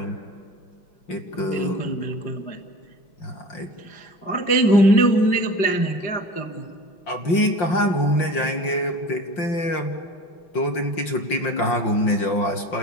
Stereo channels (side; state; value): right; late; 5.7 ms